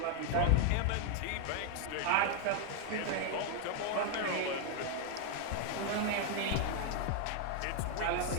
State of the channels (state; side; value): different; both; correlation 0.00